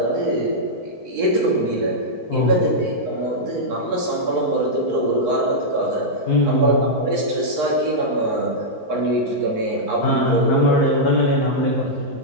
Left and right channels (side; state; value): right; late; 4.5 ms